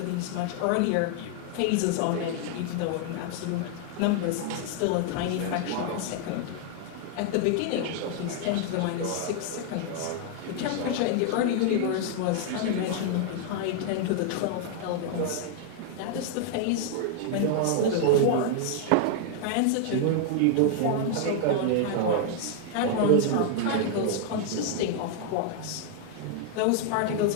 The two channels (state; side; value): different; both; correlation 0.00